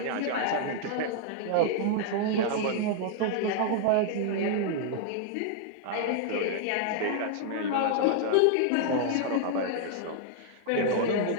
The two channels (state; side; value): different; both; correlation -0.01